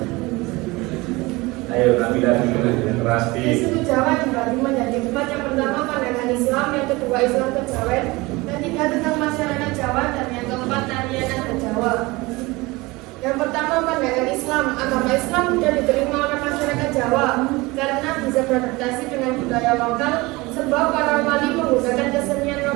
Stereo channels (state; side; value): quieter; left; 22.6 dB